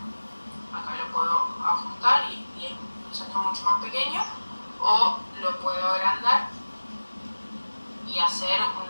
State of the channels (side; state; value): both; inverted; correlation -1.00